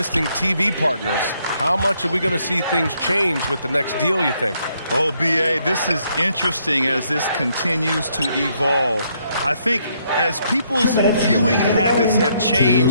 TV partners. How much are we going to see things change with the next deal, you think? Oh, B.A., this is interesting as this continues to evolve. I think as people's viewing habits have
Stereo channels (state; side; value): inverted; both; correlation -0.72